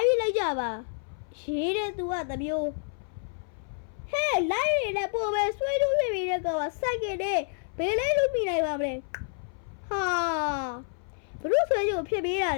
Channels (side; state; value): right; silent; 59 dB below the other